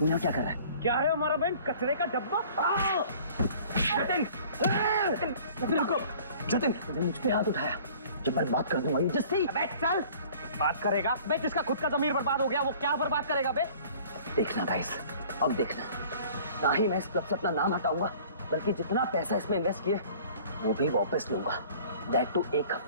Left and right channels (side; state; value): both; inverted; correlation -0.49